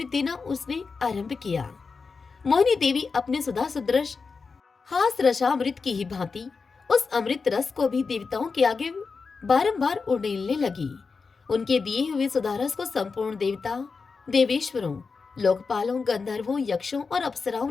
देना उसने आरंभ किया। मोहिनी देवी अपने सुधा सदृश हास रसामृत की ही भांति उस अमृत रस को भी देवताओं के आगे बारंबार उड़ेलने लगी। उनके दिए हुए सुधारस को संपूर्ण देवता, देवेश्वरों, लोकपालों, गंधर्वों, यक्षों और अप्सराओं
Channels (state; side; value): quieter; right; 4.8 dB